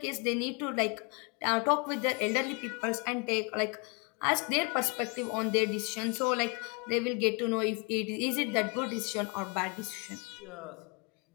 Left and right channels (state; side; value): quieter; right; 32.9 dB